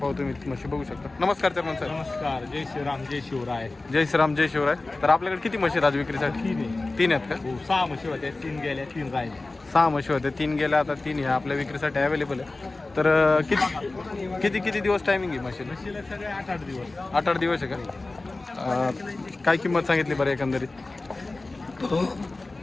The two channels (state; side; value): quieter; right; 3.2 dB